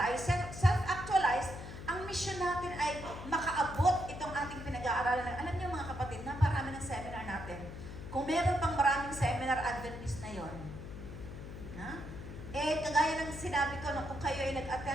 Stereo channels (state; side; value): noise; left; hum, 10 dB below the sound